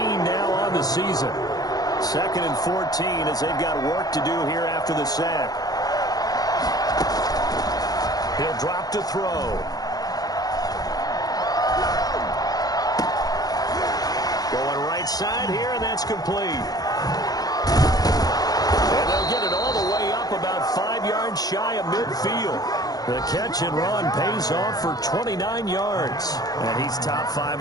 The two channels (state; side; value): late; right; 0.19 ms